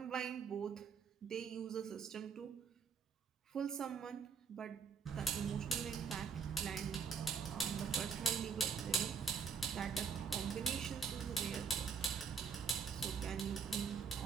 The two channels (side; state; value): left; quieter; 5.9 dB